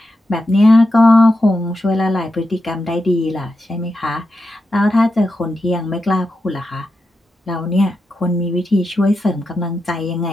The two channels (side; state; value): both; normal; correlation 0.88